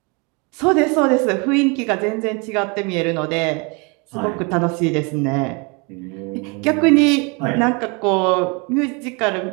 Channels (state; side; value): quieter; left; 30.9 dB